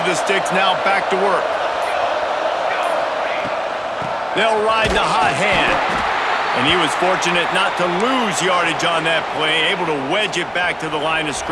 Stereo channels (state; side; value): identical; both; correlation 1.00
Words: the sticks, now back to work. They'll ride the hot hand. And he was fortunate not to lose yardage on that play, able to wedge it back to the line of